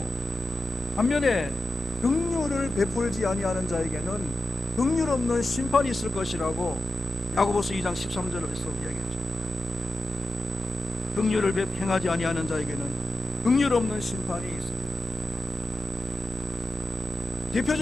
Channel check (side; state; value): both; normal; correlation 0.92